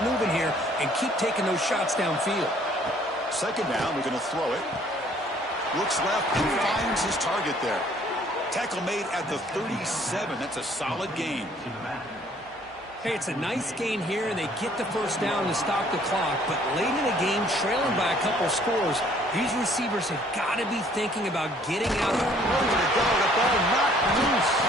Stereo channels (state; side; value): normal; both; correlation 0.59